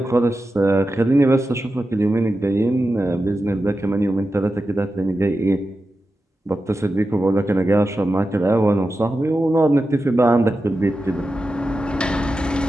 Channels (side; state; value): both; normal; correlation 0.91